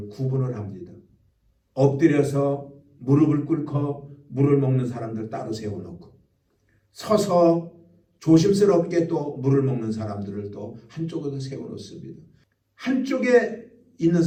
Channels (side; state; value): both; identical; correlation 1.00